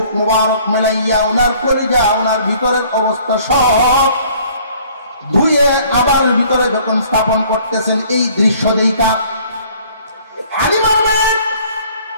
মুবারক মেলাইয়া ওনার কলিজা, ওনার ভিতরের অবস্থা সব ধুয়ে আবার ভিতরে যখন স্থাপন করতেছেন, এই দৃশ্য দেখা হালিমা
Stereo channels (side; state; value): both; inverted; correlation -0.56